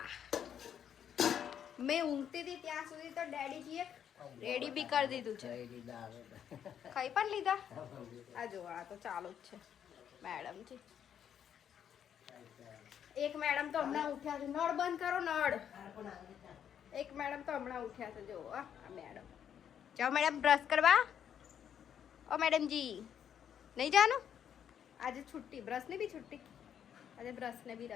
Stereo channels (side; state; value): right; quieter; 9.0 dB